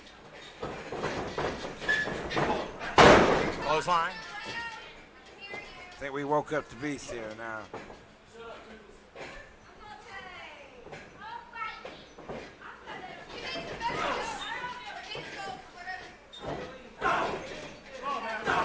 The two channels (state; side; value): identical; both; correlation 1.00